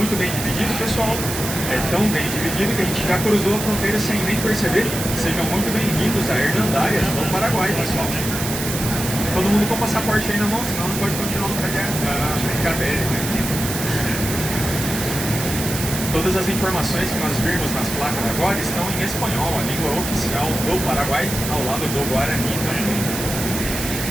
bem dividido, pessoal? É tão bem dividido que a gente já cruzou a fronteira sem nem perceber. Sejam muito bem-vindos a Hernandárias, no Paraguai, pessoal. Todo mundo com o passaporte aí na mão, senão não pode continuar o trajeto. Brincadeira, né? Todas as informações que nós vimos nas placas agora estão em espanhol, a língua oficial do Paraguai, ao lado do Guarani também.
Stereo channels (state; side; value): noise; right; hiss, 5 dB below the sound